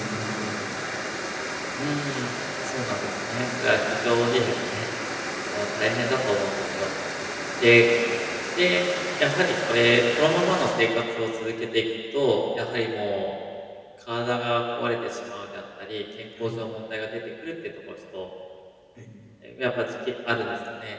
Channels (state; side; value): identical; both; correlation 1.00